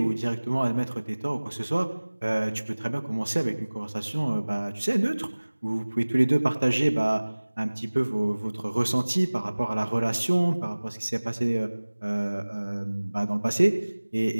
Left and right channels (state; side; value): inverted; both; correlation -1.00